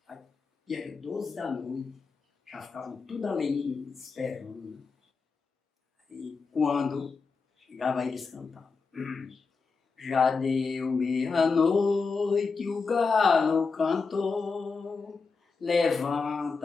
Aí, e era 12 da noite, já ficavam tudo ali esperando. Né? E quando chegava eles cantavam. Já deu meia-noite, o galo cantou,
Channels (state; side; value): quieter; right; 4.7 dB